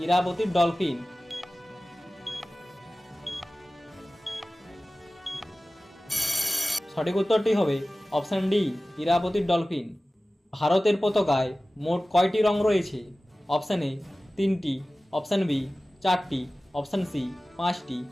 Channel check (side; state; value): both; normal; correlation 0.97